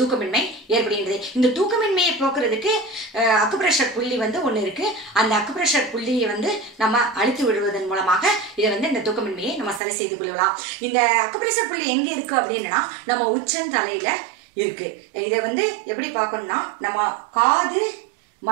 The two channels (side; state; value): left; drops out; at 9.8 s